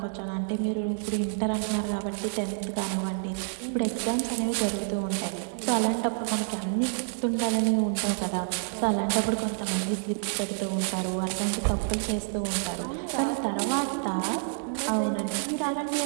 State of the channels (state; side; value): silent; left; digital silence